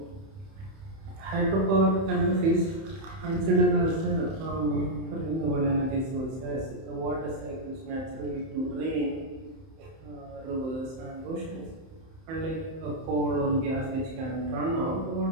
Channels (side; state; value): left; late; 31 ms